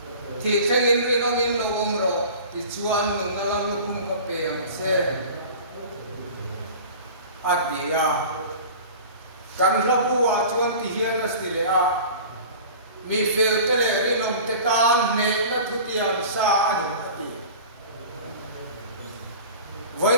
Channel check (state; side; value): inverted; both; correlation -0.39